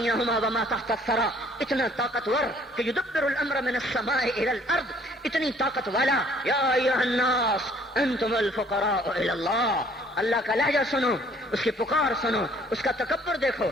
وما تحت الثری، اتنا طاقتور کہ یدبر الامر من السماء الى الارض، اتنی طاقت والا۔ یا ایھا الناس انتم الفقراء الی اللہ، اللہ کا لہجہ سنو، اس کی پکار سنو، اس کا تکبر دیکھو۔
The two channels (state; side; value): normal; both; correlation 0.59